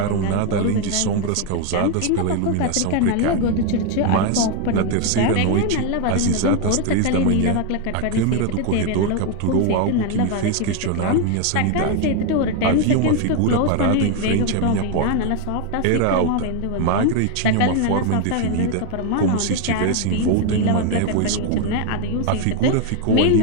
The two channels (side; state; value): both; different; correlation 0.01